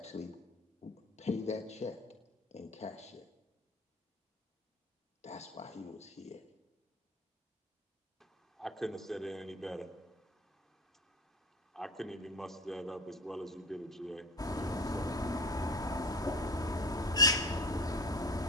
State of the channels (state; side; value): normal; both; correlation 0.32